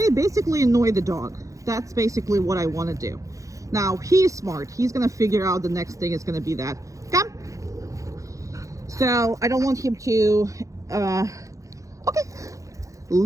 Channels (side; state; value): left; late; 0.16 ms